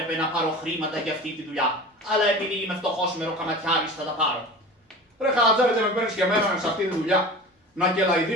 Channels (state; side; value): normal; both; correlation 0.35